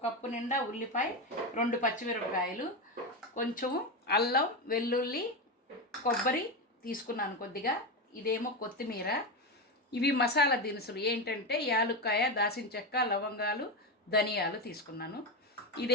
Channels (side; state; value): both; normal; correlation 0.14